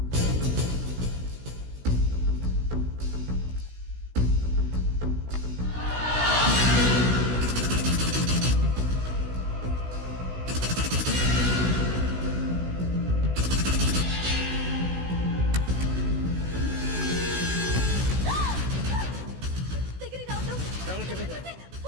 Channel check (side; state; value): left; late; 16 ms